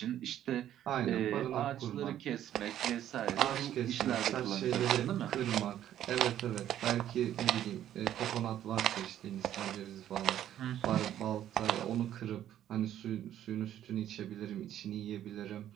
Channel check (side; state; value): left; quieter; 11.4 dB